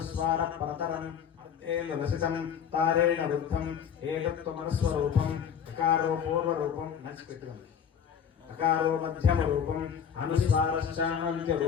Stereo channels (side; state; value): right; quieter; 7.8 dB